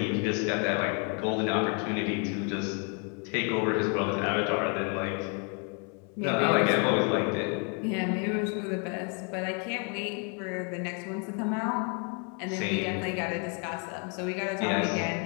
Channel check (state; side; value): quieter; right; 37.8 dB